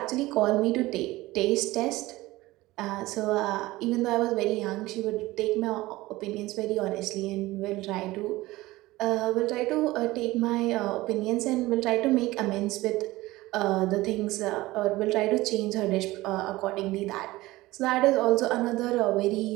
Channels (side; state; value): left; quieter; 18.8 dB